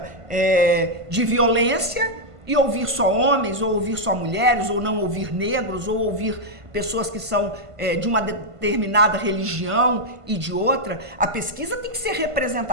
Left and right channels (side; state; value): left; late; 1.5 ms